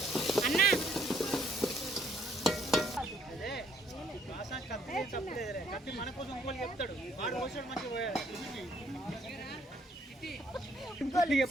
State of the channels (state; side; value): normal; both; correlation 0.66